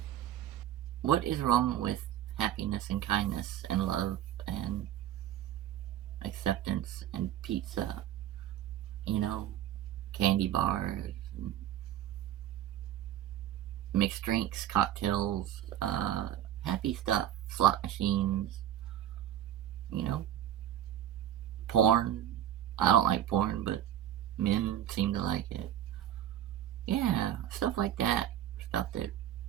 is wrong with happiness and kindness and love and acceptance and pizza? You know, candy bars, mixed drinks, cocktails, happy stuff, slot machines, you know, porn. I don't like porn, but men seem to like it. Yeah, stuff like that. Stuff that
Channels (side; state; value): left; quieter; 11.3 dB